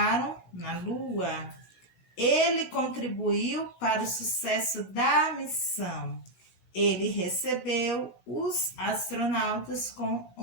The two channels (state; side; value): late; right; 16 ms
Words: na Lua. Ele contribuiu para o sucesso da missão. Ele recebeu os astronautas com